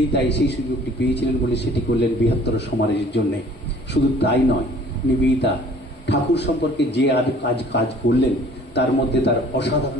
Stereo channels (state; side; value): normal; both; correlation 0.52